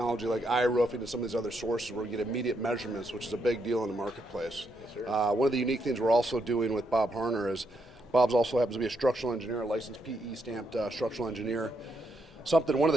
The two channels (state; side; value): normal; both; correlation 0.78